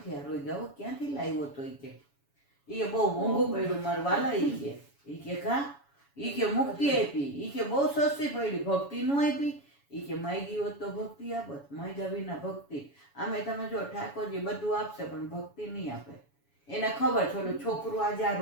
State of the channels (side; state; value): right; late; 7.1 ms